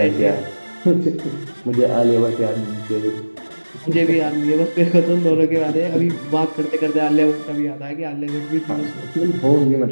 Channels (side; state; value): both; inverted; correlation -1.00